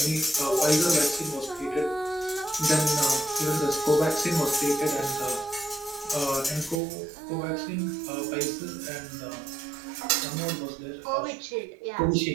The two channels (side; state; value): left; drops out; at 6.8 s